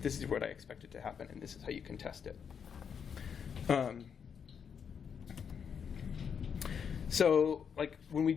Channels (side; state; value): right; quieter; 7.1 dB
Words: This is what I expected to happen, and this is how you can test it. So when we